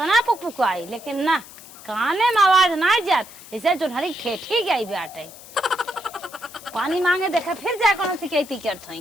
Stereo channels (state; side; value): noise; left; hiss, 18 dB below the sound